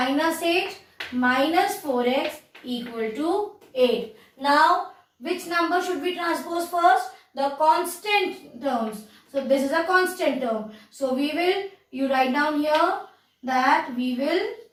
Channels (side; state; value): both; identical; correlation 1.00